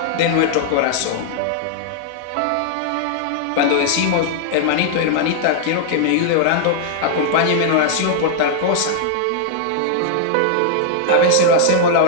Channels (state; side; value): different; both; correlation -0.01